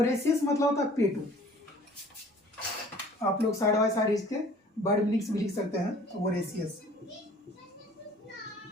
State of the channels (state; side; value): normal; both; correlation 0.51